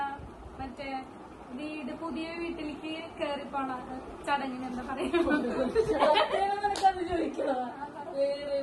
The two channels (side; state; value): both; identical; correlation 1.00